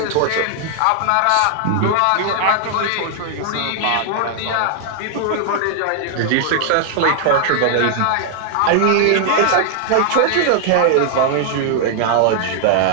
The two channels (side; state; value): both; different; correlation 0.00